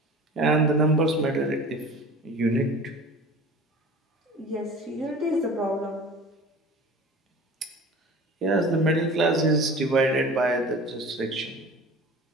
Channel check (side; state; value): both; normal; correlation 0.39